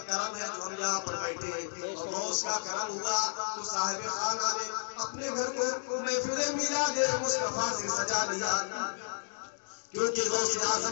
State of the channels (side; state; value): right; silent; digital silence